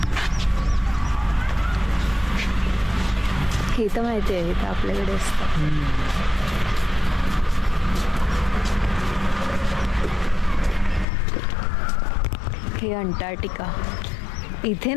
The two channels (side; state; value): right; drops out; at 11.1 s